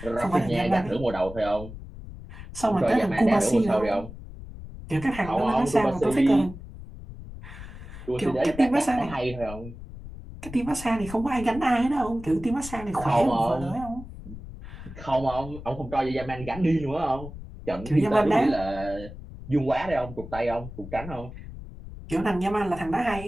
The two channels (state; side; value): noise; left; rumble, 13 dB below the sound